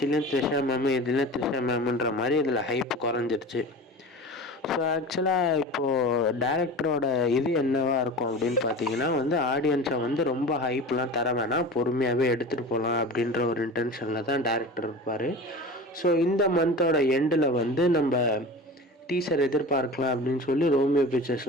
த்ரிஷா மேமு இதுலேயும் த்ரிஷா மேமுன்ற மாதிரி இதில் ஹைப் குறைஞ்சிருச்சு. ஸோ ஆக்சுவலாக இப்போது டேரக்டரோட இது என்னவா இருக்கும் அப்படின்னு பார்த்தீங்கன்னா வந்து, ஆடியன்ஸை வந்து ரொம்ப ஹைப்லாம் தர வேணாம், பொறுமையாகவே எடுத்துகிட்டு போகலாம் அப்படின்ற ஒரு இன்டென்ஷனில் தான் டேரக்டர் இருப்பார். ஸோ இந்த மந்தோட எண்டில் வந்து நம்ம டீசர் எதிர்பார்க்கலாம் அப்படின்னு சொல்லி ரோமியோ பிக்சர்ஸ்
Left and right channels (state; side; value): normal; both; correlation 0.34